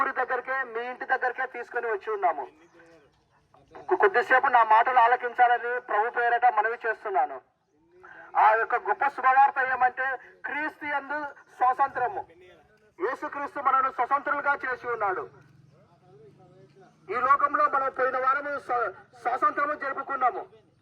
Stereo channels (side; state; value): both; identical; correlation 1.00